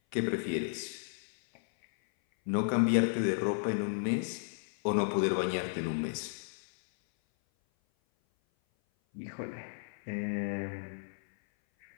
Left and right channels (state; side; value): silent; right; 55 dB below the other